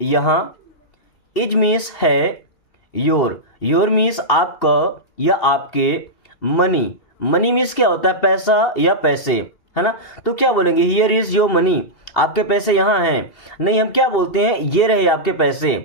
यहाँ, इज मीन्स है, योर मीन्स आपका या आपके, मनी, मनी मीन्स क्या होता है, पैसा या पैसे, है ना। तो क्या बोलेंगे, हियर इज योर मनी, आपके पैसे यहाँ हैं। नहीं, हम क्या बोलते हैं, ये रहे आपके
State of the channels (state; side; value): late; right; 2.8 ms